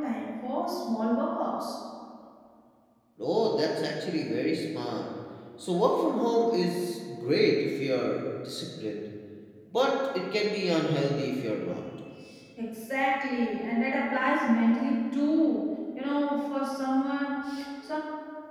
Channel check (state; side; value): identical; both; correlation 1.00